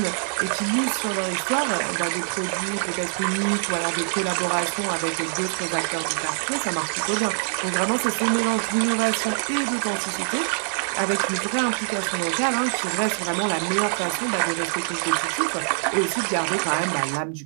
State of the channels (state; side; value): silent; left; digital silence